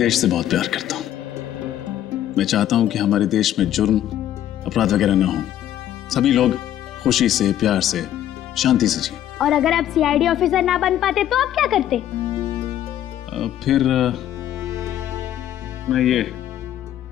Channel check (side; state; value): right; quieter; 11.7 dB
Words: से बहुत प्यार करता हूँ। मैं चाहता हूँ कि हमारे देश में जुर्म, अपराध वगैरह ना हो, सभी लोग खुशी से, प्यार से, शांति से जिए। और अगर आप सीआईडी ऑफिसर ना बन पाते तो आप क्या करते? फिर मैं ये